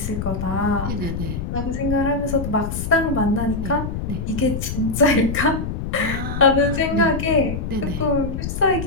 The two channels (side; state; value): left; noise; rumble, 4 dB below the sound